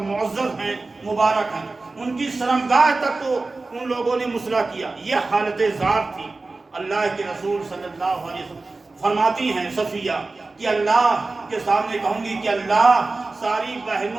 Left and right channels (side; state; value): left; quieter; 3.5 dB